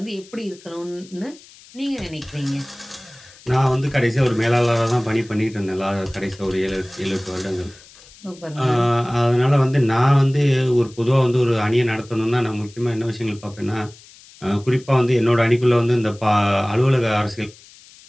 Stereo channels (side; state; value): left; noise; hiss, 23 dB below the sound